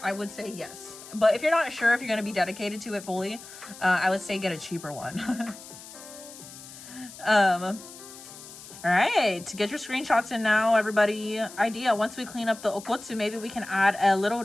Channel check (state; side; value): noise; left; hiss, 16 dB below the sound